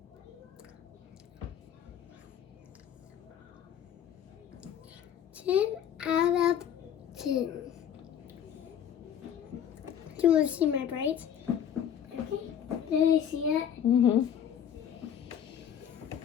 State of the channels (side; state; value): right; quieter; 9.2 dB